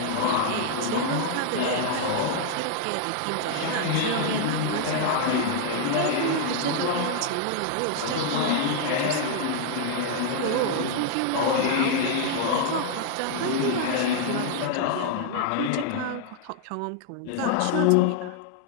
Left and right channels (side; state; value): both; different; correlation 0.00